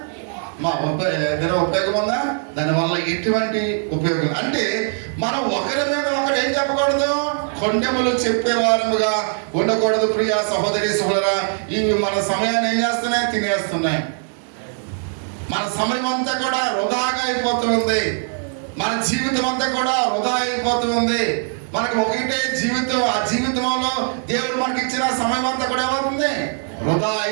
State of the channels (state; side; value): silent; left; 56 dB below the other